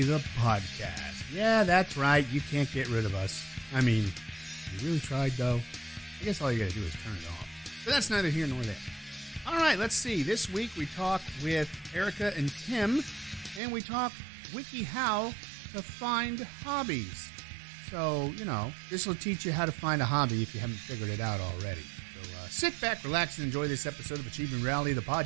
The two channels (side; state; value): left; drops out; at 13.6 s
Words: the podcast. Yeah, that's right, you can't get rid of us. I mean, you really tried though. I guess all you gotta do is turn it off. But that's neither here nor there. Alright, let's see. This week we talk with Erica and Tim, and we talk WikiHow to find hobbies. So, this will teach you how to find a hobby if you haven't figured it out already. So sit back, relax, and enjoy this episode of Achieving Reality, the